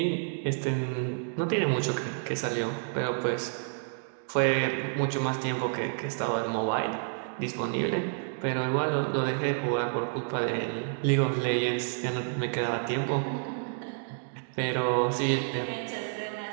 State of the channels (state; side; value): silent; left; digital silence